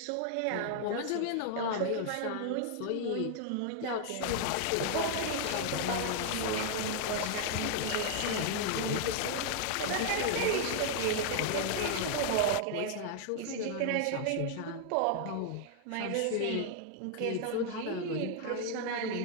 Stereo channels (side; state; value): both; different; correlation 0.00